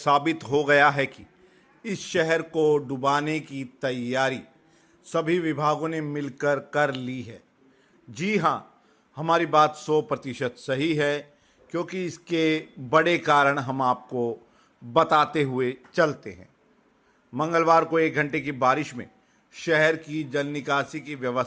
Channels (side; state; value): both; identical; correlation 1.00